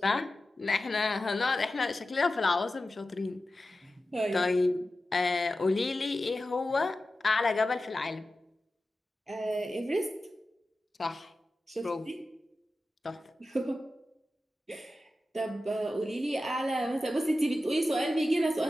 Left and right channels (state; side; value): normal; both; correlation 0.93